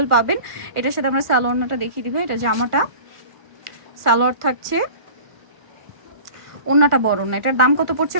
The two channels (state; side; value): late; left; 1.4 ms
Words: পাবেন। এটার সাথে আমরা সালোয়ারটা দেখিয়ে দিবে, এটা জামাটা, সালোয়ার থাকছে, ওন্নাটা বড় না। এটার দাম কত পড়ছে